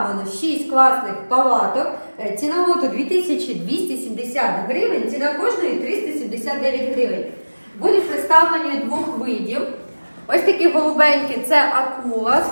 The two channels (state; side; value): inverted; both; correlation -1.00